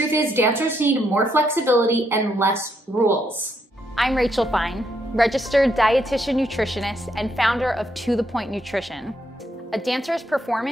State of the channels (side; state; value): both; normal; correlation 0.76